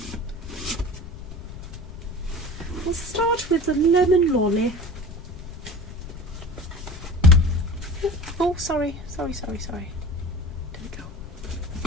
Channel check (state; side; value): noise; left; rumble, 11 dB below the sound